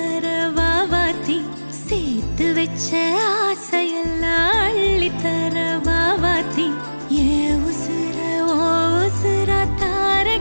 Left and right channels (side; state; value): both; inverted; correlation -1.00